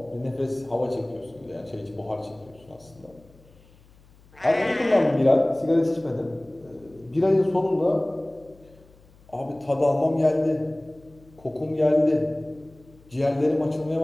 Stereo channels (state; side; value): noise; left; hum, 27 dB below the sound